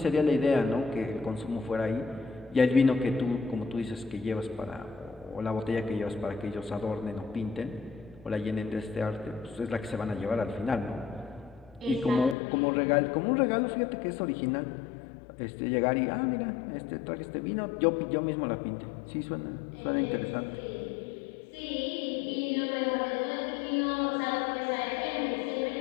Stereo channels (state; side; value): drops out; right; at 12.4 s